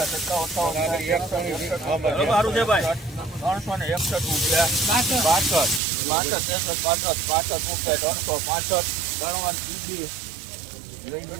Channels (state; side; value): drops out; left; at 5.8 s